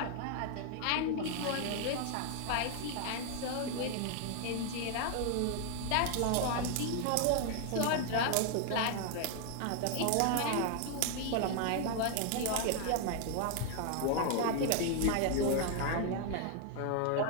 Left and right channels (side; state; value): both; different; correlation 0.00